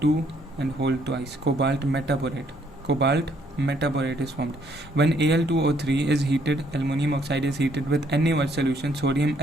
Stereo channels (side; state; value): both; normal; correlation 0.68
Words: and whole twice. Cobalt metaborate is formed. When Al2O3 is heated, aluminum oxide is heated with NaOH solution, sodium